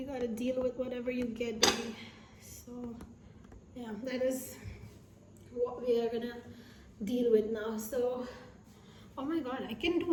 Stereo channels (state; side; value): identical; both; correlation 1.00